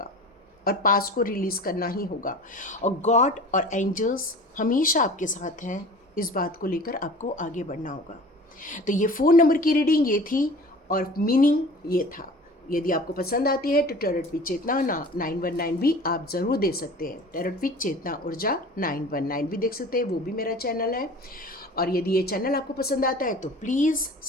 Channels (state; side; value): normal; both; correlation 0.41